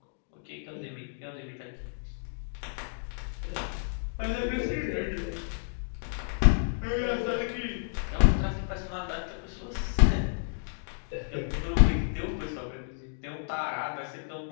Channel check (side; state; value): right; silent; digital silence